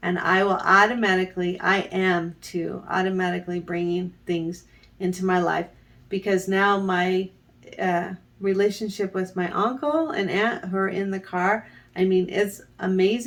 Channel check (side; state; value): both; identical; correlation 1.00